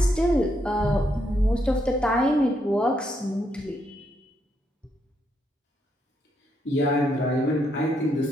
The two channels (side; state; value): both; normal; correlation 0.77